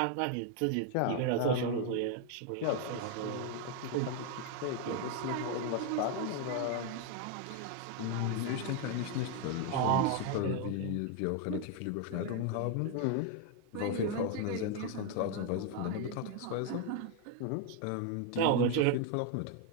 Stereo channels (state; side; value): different; both; correlation 0.01